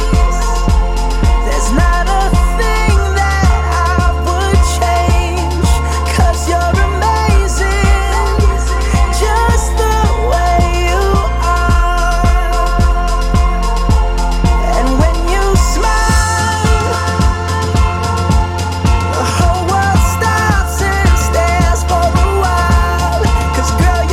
there's not a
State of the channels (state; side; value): identical; both; correlation 1.00